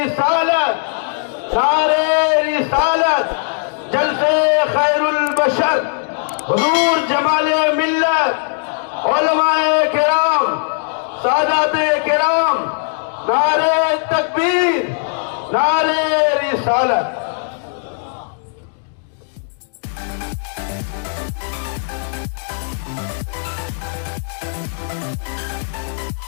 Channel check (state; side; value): silent; right; digital silence